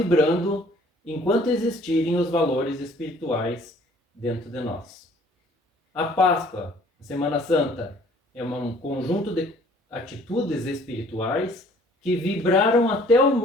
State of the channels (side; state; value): both; normal; correlation 0.56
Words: enquanto existirem os valores espirituais dentro de nós. A Páscoa, a Semana Santa, é um conjunto de atitudes espirituais que vibraram até o